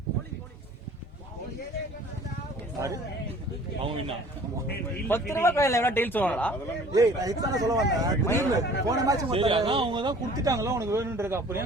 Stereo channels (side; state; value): both; normal; correlation 0.50